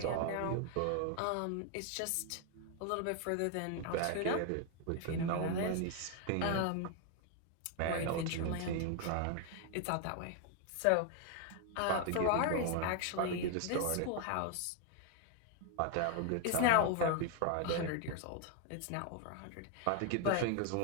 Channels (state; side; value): different; both; correlation 0.01